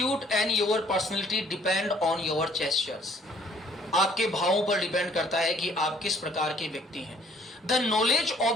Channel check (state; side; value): normal; both; correlation 0.60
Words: and your personality depend on your gestures. आपके भावों पर डिपेंड करता है कि आप किस प्रकार के व्यक्ति हैं. The knowledge